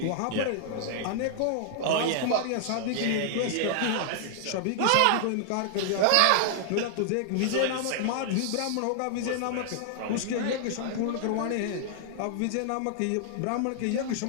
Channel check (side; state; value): both; different; correlation -0.01